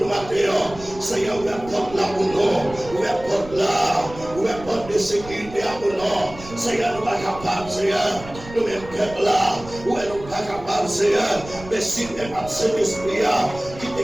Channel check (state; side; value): noise; right; rumble, 15 dB below the sound